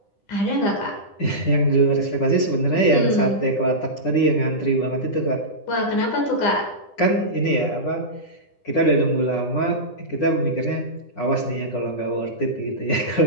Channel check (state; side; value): late; right; 9.9 ms